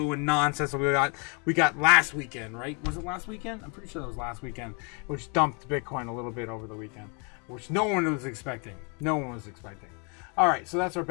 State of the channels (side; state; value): right; quieter; 35.3 dB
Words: and nonsense that we got last weekend, right? Was it last weekend? I'm pretty sure that was last weekend, which dumped Bitcoin a little bit over the weekend, which no one was expecting. No one was expecting. All right, so that's our